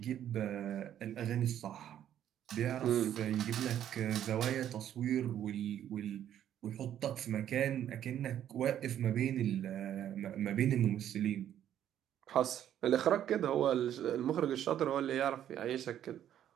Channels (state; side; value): quieter; left; 10.7 dB